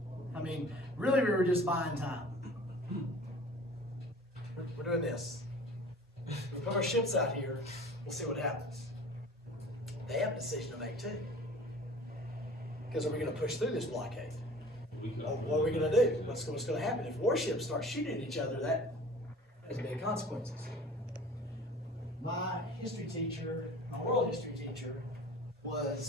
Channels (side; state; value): both; normal; correlation 0.44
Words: I mean, really, we were just buying time. We're doing this. We put our ships out here. We'll see what happens. They have a decision to make too. Because are we going to push through this blockade? Or what are we going to do? What's going to happen? If warships start shooting at each other, that has big consequences. My history teacher, my world history teacher,